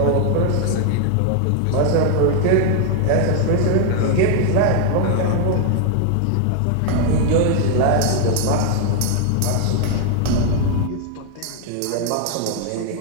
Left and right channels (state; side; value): different; both; correlation 0.00